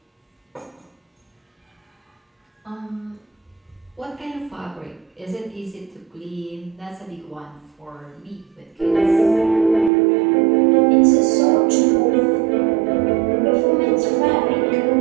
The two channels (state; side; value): drops out; left; at 9.9 s